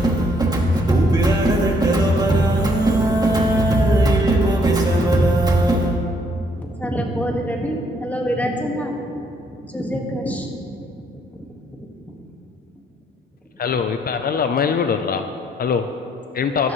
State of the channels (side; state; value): both; normal; correlation 0.68